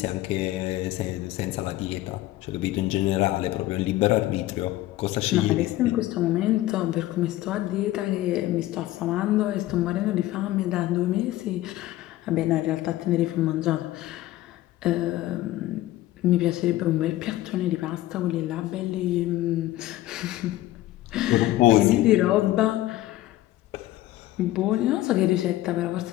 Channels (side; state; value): right; quieter; 15.7 dB